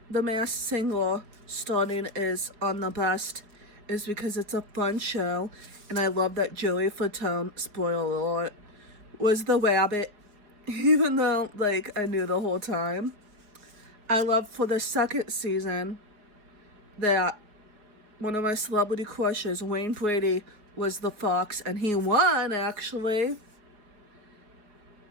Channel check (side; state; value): left; late; 4.7 ms